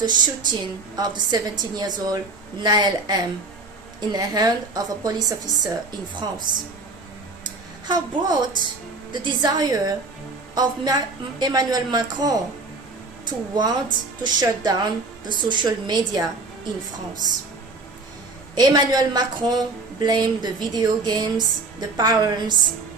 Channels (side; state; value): left; quieter; 3.5 dB